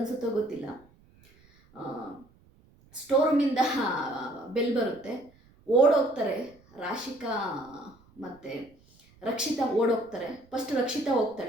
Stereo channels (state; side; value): noise; right; rumble, 29 dB below the sound